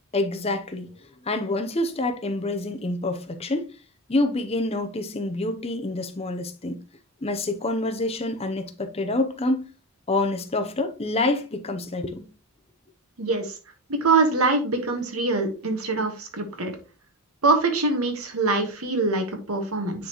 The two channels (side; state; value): both; normal; correlation 0.20